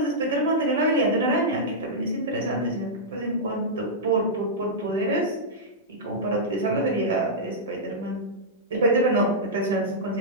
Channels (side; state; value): both; normal; correlation -0.11